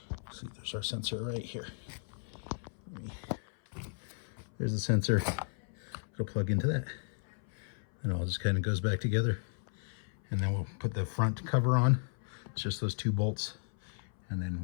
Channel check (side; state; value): right; silent; 55 dB below the other